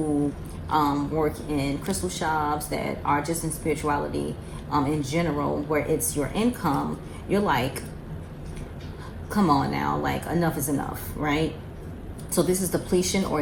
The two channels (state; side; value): identical; both; correlation 1.00